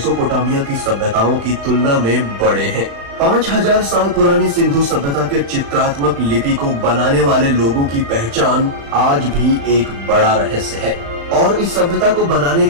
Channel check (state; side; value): late; left; 35 ms